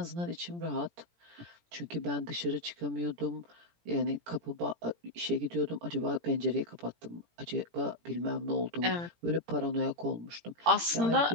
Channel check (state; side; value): late; left; 17 ms